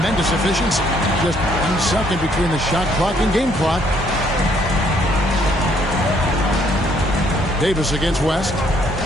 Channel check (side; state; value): both; normal; correlation 0.66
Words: efficiency. Just 1 second between the shot clock and game clock. Davis against West.